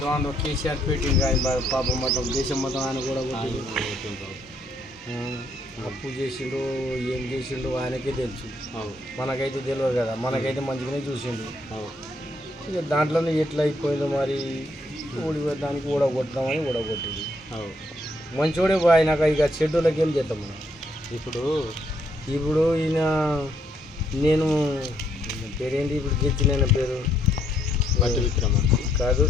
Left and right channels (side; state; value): both; normal; correlation 0.72